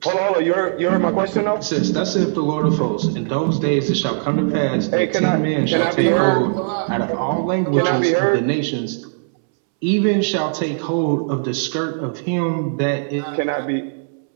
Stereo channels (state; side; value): silent; left; 66 dB below the other